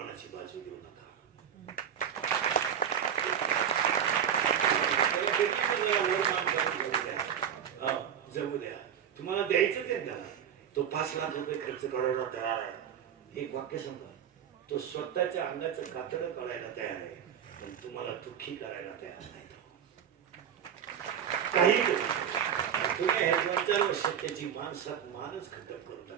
बाजू देऊ नका. जगू द्या, तुम्हाला द्यायचं ते द्या. तो 5 लाख रुपये खर्च करायला तयार आहे. एक वाक्य सांगा, तो स्वतःच्या अंगाचं कातडं काढायला तयार आहे, पण तुम्हाला दुःखी करायला तयार नाही. काही तुम्ही हे 2-4 वर्षात त्याची माणसात मानच खटक करून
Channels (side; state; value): left; quieter; 8.7 dB